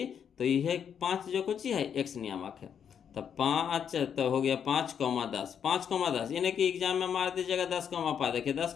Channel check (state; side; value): quieter; right; 8.0 dB